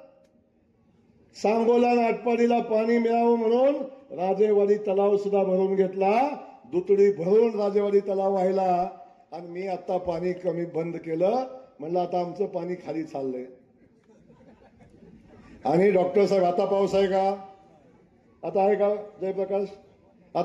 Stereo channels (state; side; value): identical; both; correlation 1.00